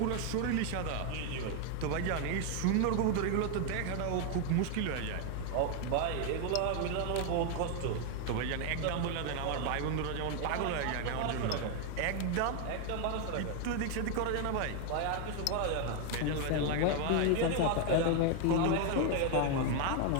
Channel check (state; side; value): different; both; correlation 0.01